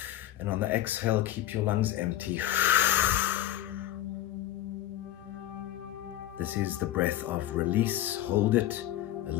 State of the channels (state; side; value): quieter; right; 13.1 dB